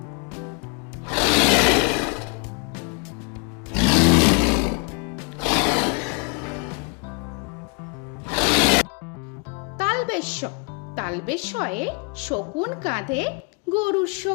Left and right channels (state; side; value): quieter; right; 34.7 dB